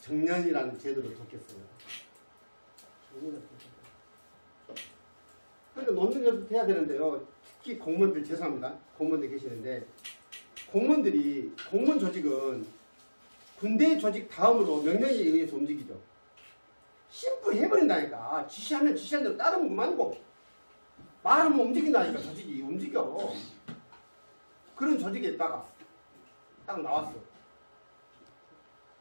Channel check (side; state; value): both; inverted; correlation -1.00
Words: 제도를 뒀겠어요? 그러니까 논문 연습 해야 되는데요. 특히 공무원들 죄송합니다. 공무원들 계시는데 공무원 조직은 군대 조직 다음으로 명령에 의해서 움직이죠. 심플 해버린다니까. 지시하면 지시한 대로 따르면 그만이고 말하면 움직인다니까. 조직이 움직여. 그런 조직에 있다가 딱 나왔어.